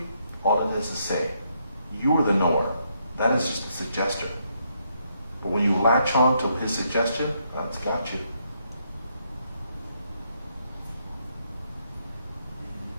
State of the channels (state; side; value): inverted; both; correlation -0.75